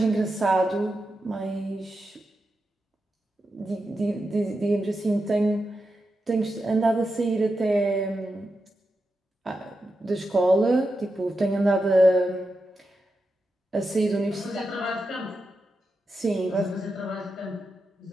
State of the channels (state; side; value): normal; both; correlation 0.88